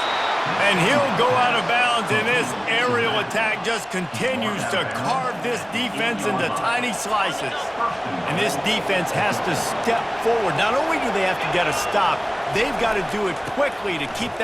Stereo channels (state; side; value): identical; both; correlation 1.00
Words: And he'll go out of bounds, and this aerial attack just continues to carve this defense into tiny slices. And this defense has to step forward. Not only do they have to get a stop, they've got to do it quickly to keep